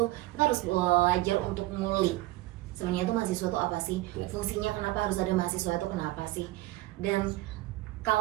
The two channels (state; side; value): quieter; left; 18.3 dB